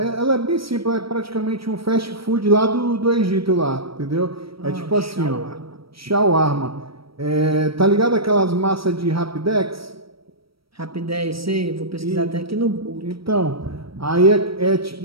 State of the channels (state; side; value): late; left; 0.75 ms